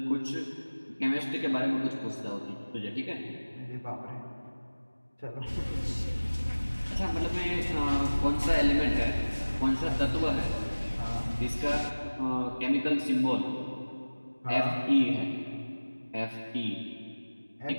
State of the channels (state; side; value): inverted; both; correlation -1.00